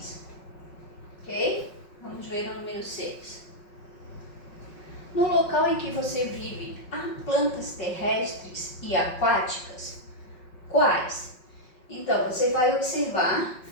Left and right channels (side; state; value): right; late; 5.5 ms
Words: ok? Vamos ver o número 6. No local em que você vive, há plantas terrestres e aquáticas? Quais? Então, você vai observar